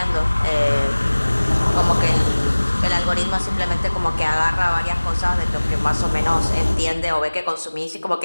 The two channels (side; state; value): both; inverted; correlation -1.00